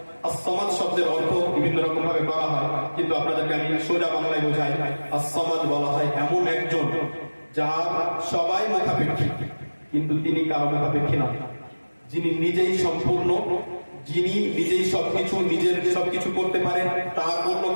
as-সামাদ শব্দের অর্থ বিভিন্ন রকম ভাবে করা হয়, কিন্তু আপনাদেরকে আমি সোজা বাংলায় বোঝাই। as-সামাদ বলা হয় এমন একজন যার সবাই মুখাপেক্ষী, কিন্তু তিনি কারো মুখাপেক্ষী না, যিনি নিজেই সম্পূর্ণ, যিনি নিজেই সবকিছু করতে পারেন, তার অন্য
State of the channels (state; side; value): inverted; both; correlation -1.00